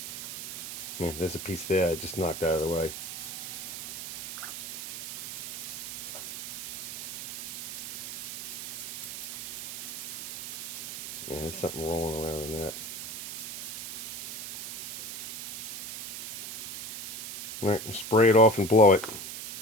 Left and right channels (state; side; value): noise; right; hiss, 8 dB below the sound